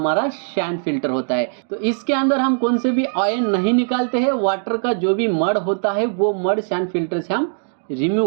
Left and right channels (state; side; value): silent; left; digital silence